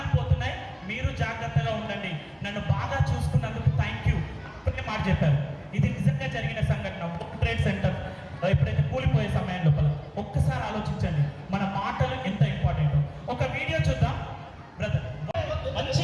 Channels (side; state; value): both; identical; correlation 1.00